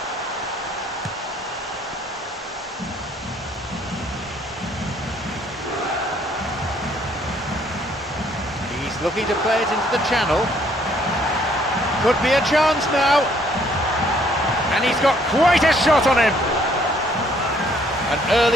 He's looking to play it into the channel. Could be a chance now. And he's got quite a shot on him. An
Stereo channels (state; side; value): normal; both; correlation 0.64